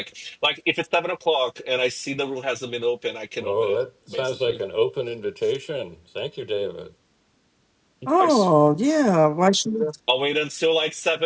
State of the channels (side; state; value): both; identical; correlation 1.00